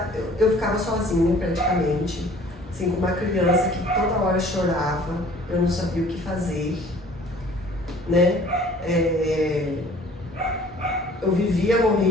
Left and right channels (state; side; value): normal; both; correlation 0.52